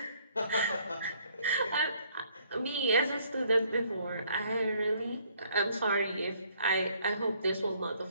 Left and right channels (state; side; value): inverted; both; correlation -0.64